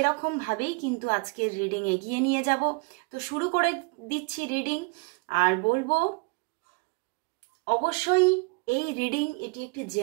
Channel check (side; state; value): left; quieter; 29.6 dB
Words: কিন্তু আজকের রিডিং এগিয়ে নিয়ে যাব। তো শুরু করে দিচ্ছি রিডিং, আর বলবো অবশ্যই এই রিডিং এটি একটি